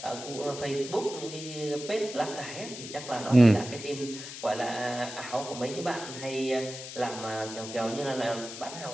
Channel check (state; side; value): noise; left; hiss, 10 dB below the sound